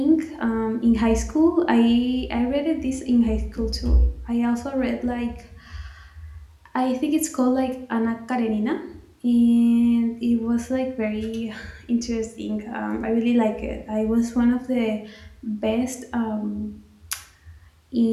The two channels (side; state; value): both; identical; correlation 1.00